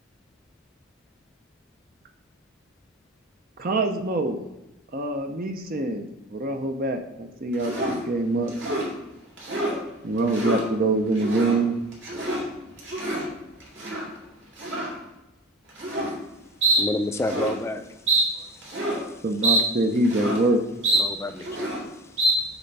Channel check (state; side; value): normal; both; correlation 0.36